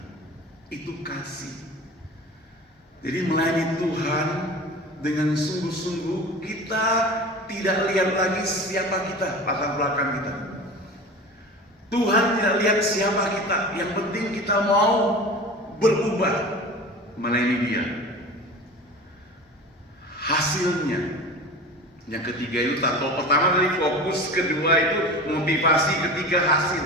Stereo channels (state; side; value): normal; both; correlation 0.35